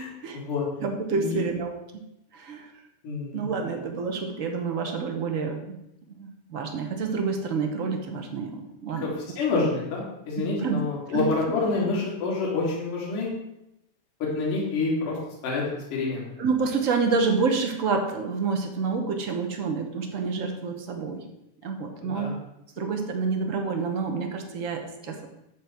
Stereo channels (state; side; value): late; right; 7.1 ms